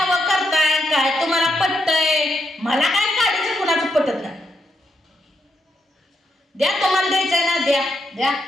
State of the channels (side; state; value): both; normal; correlation 0.81